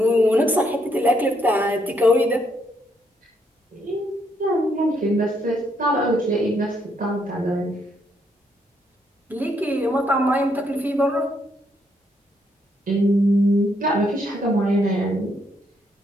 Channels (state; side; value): normal; both; correlation 0.74